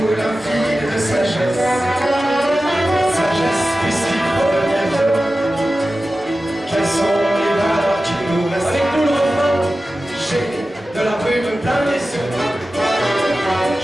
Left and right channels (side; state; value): both; normal; correlation 0.94